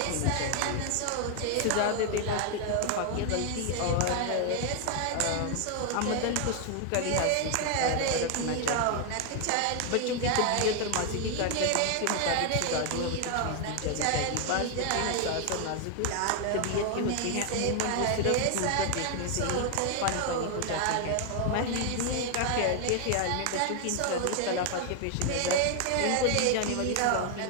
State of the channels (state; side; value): different; both; correlation 0.00